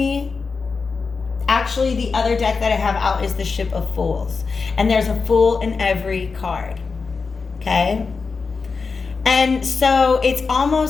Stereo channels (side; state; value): right; quieter; 4.7 dB